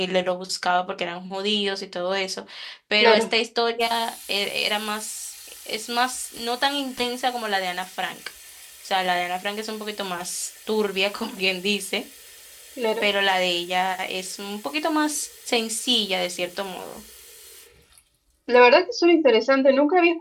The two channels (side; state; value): both; identical; correlation 1.00